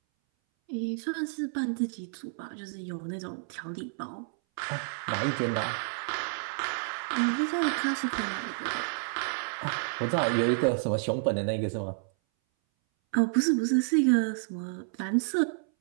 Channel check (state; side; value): silent; left; 58 dB below the other